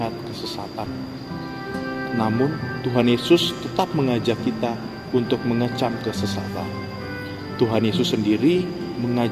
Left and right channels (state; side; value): identical; both; correlation 1.00